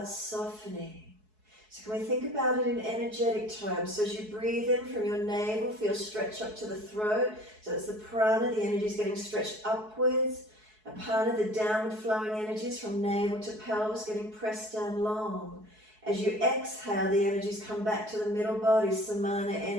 softening. So can we think about it in energetic terms? So as you breathe in from your navel, feel stretch up to the throat. So that's the prana, the energy is getting stretched upwards. Apana, the downward flowing energies from navel to pelvis getting pressed down long. As you exhale, the energies come back to the middle body, samana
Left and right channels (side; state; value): left; late; 4.7 ms